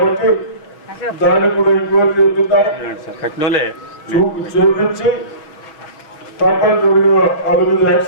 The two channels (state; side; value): late; right; 6.5 ms